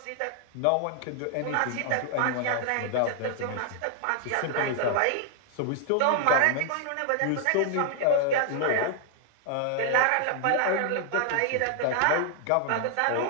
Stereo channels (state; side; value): different; both; correlation 0.00